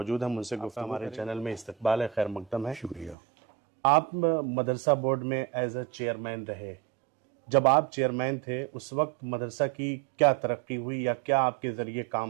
हैं, उनसे गुफ्तगू हमारे चैनल में इस्तकबाल है, खैर मकदम है। शुक्रिया। आप मदरसा बोर्ड में एज अ चेयरमैन रहे। जब आप चेयरमैन थे उस वक्त मदरसा की क्या तरक्की हुई या क्या आपके ज़रिए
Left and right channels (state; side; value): drops out; left; at 3.2 s